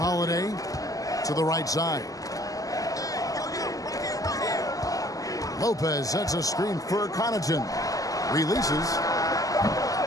to the right side. Lopez sets a screen for Connaughton. Releases.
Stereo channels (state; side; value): late; right; 0.17 ms